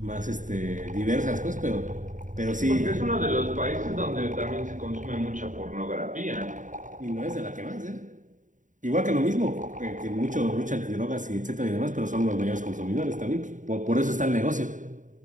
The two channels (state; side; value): late; left; 0.37 ms